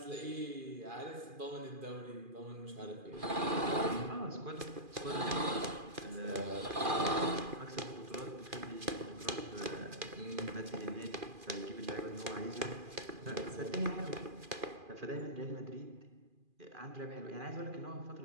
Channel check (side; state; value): left; late; 2.4 ms